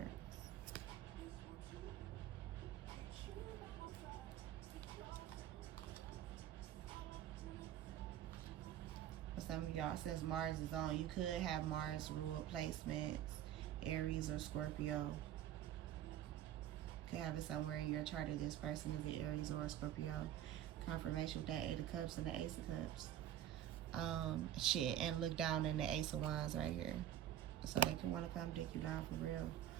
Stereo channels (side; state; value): left; quieter; 11.4 dB